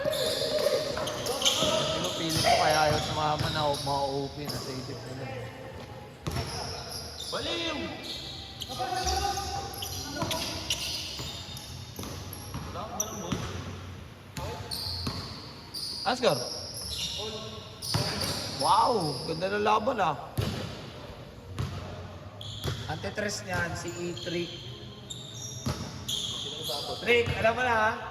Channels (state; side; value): identical; both; correlation 1.00